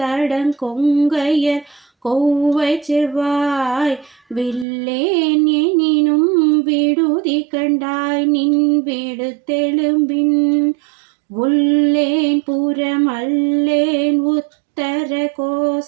கொவ்வை செவ்வாய் வில்லேன் எனினும் விடுதி கண்டாய் நின் விடுத்தெலும்பின் உள்ளேன் புறமல்லேன் உத்தர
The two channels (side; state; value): left; drops out; at 4.7 s